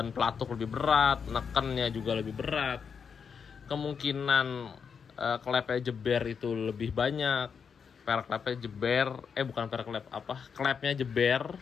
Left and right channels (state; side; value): quieter; right; 6.4 dB